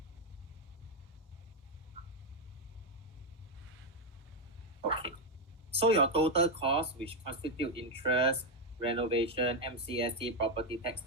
Okay, so your total cost, which constitute interest, renovation, MCST, property tax,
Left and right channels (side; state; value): both; normal; correlation 0.04